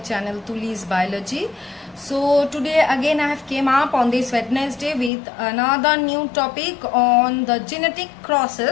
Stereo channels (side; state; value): right; drops out; at 5.1 s